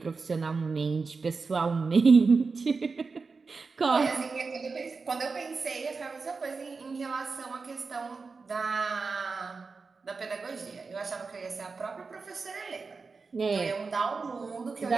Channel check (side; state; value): left; quieter; 4.5 dB